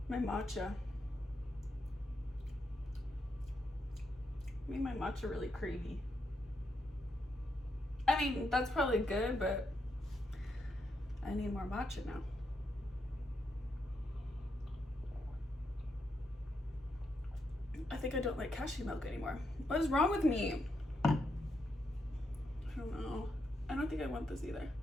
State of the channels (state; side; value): normal; both; correlation 0.81